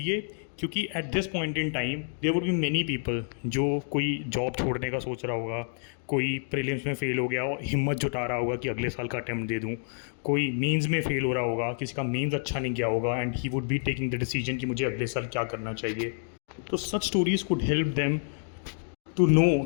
क्योंकि at this point in time there would be many people जो कोई job छोड़ने का सोच रहा होगा, कोई प्रीलिम्स में फ़ेल हो गया और हिम्मत जुटा रहा होगा कि अगले साल का अटैम्प्ट दे दूं, कोई मेंस में फ़ेल हो रहा होगा, किसी का मेंस अच्छा नहीं गया होगा and he would be taking the decision कि मुझे अगले साल क्या करना चाहिए। तो such stories could help them to know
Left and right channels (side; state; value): right; silent; digital silence